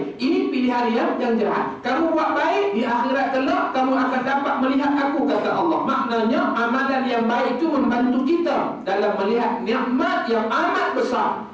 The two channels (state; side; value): identical; both; correlation 1.00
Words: ini pilihan yang jahat. Kamu buat baik, di akhirat kelak kamu akan dapat melihat aku, kata Allah. Maknanya amalan yang baik itu membantu kita dalam melihat nikmat yang amat besar,